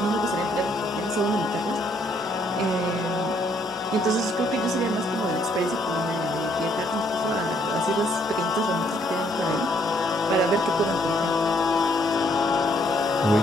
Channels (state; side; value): normal; both; correlation 0.68